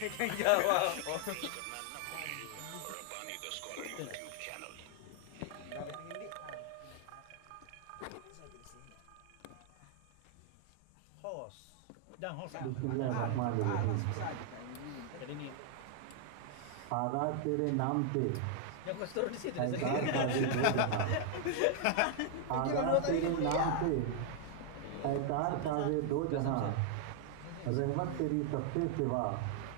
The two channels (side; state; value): both; different; correlation 0.00